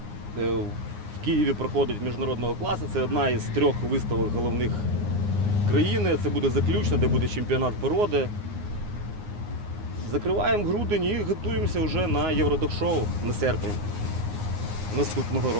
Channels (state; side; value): late; left; 9.6 ms